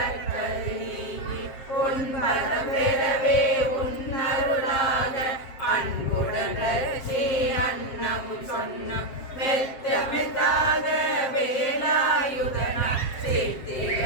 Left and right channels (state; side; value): late; right; 7.5 ms